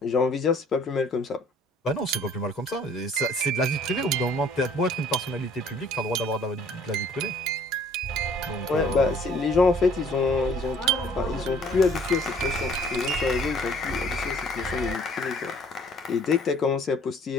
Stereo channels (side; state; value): both; normal; correlation 0.56